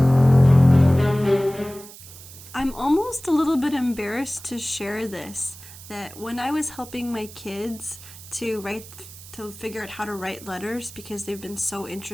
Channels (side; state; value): right; noise; hiss, 17 dB below the sound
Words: I'm almost a little bit embarrassed to share this, that when I was helping my kids to figure out how to write letters because they've been so